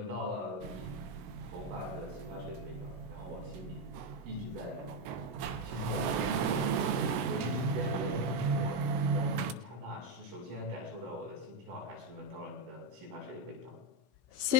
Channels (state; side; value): late; left; 16 ms